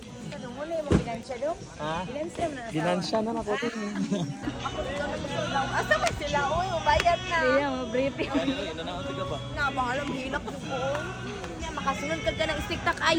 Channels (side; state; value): both; identical; correlation 1.00